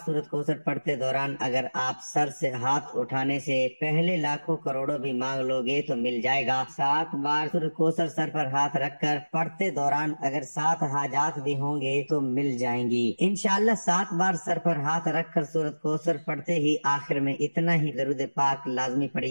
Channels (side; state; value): both; inverted; correlation -1.00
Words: سورۃ کوثر پڑھتے دوران اگر آپ سر سے ہاتھ اٹھانے سے پہلے لاکھوں کروڑوں بھی مانگ لو گے تو مل جائے گا۔ 7 بار سورۃ کوثر سر پر ہاتھ رکھ کر پڑھتے دوران اگر 7 حاجات بھی ہوں گے تو مل جائیں گی انشاءاللہ۔ 7 بار سر پر ہاتھ رکھ کر سورۃ کوثر پڑھتے ہی آخر میں اتنا ہی درود پاک لازمی